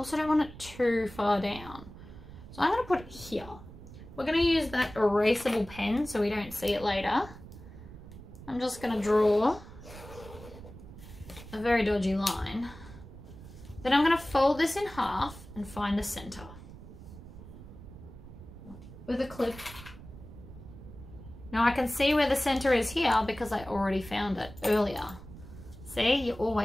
don't want it too far down. So I'm going to put it here. We're going to use that erasable pen so we don't see it later. I'm just going to draw a very dodgy line. Then I'm going to fold this in half and find the center with a clip. Now I can see where the center is here because I already found it earlier. See, you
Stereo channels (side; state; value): right; noise; rumble, 16 dB below the sound